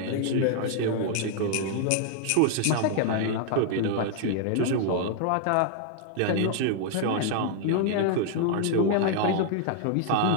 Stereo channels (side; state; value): both; different; correlation 0.00